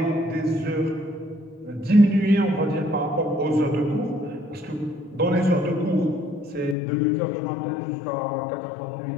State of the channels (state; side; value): drops out; right; at 6.8 s